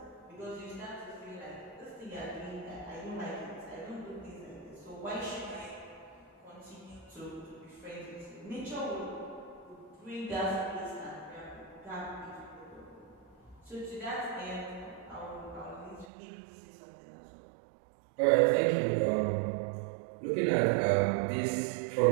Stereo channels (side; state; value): left; drops out; at 16.1 s